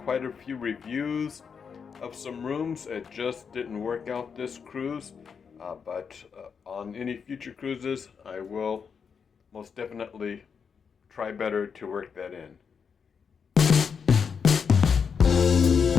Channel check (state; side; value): quieter; right; 6.3 dB